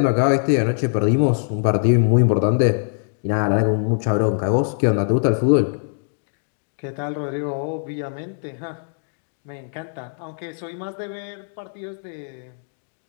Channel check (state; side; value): silent; right; digital silence